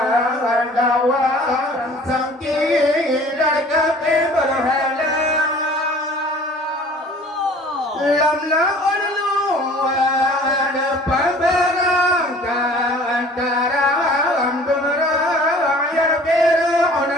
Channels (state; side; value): normal; both; correlation 0.49